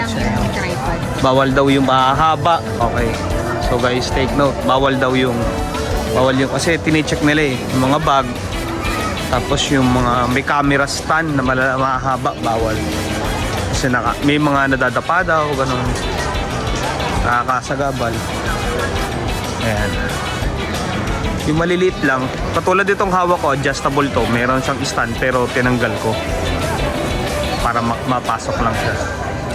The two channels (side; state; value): both; identical; correlation 1.00